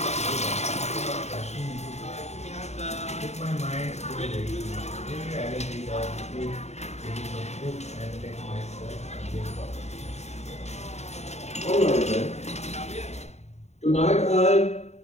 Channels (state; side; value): late; right; 0.32 ms